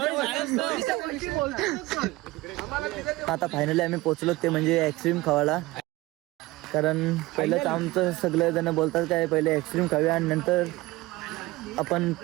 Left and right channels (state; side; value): quieter; left; 19.7 dB